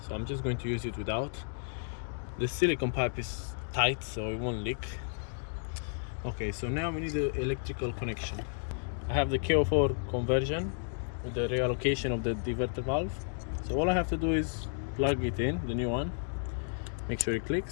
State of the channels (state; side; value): silent; right; digital silence